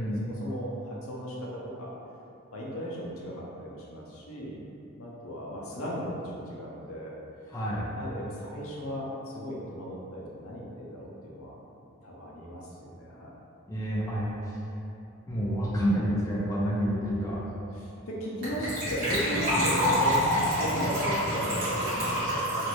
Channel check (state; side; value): normal; both; correlation 0.33